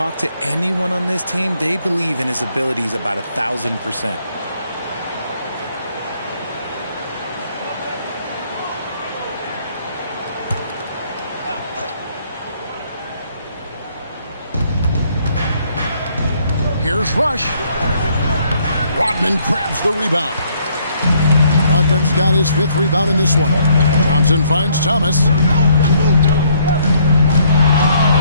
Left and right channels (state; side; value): inverted; both; correlation -0.67